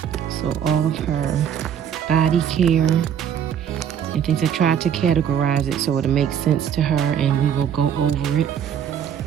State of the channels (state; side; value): quieter; left; 8.7 dB